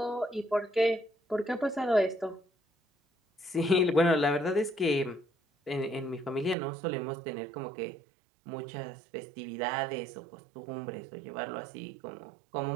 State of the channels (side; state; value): left; drops out; at 6.6 s